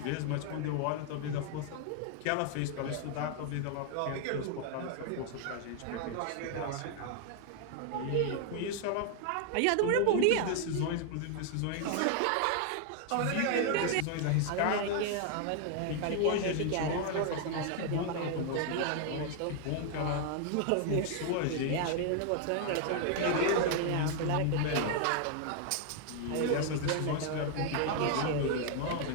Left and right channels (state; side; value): different; both; correlation 0.00